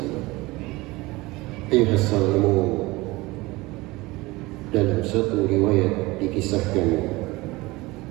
Ayuhas salimun, dalam satu riwayat dikisahkan,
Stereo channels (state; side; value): quieter; left; 21.4 dB